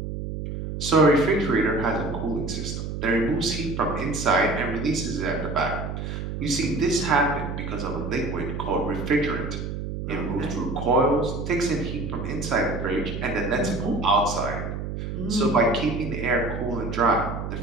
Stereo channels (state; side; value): noise; right; hum, 5 dB below the sound